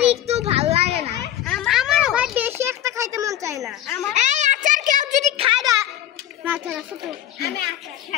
একটু ভালো লাগে না আমারও ভাই বেশি একটা খাইতে মন চায় না এই আচার কেউ যদি খায় না আচার আছে তো আমি আচার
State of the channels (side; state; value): right; quieter; 11.9 dB